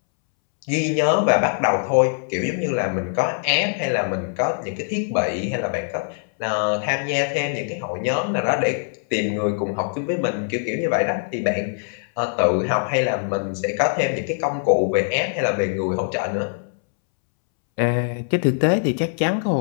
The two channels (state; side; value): silent; right; 64 dB below the other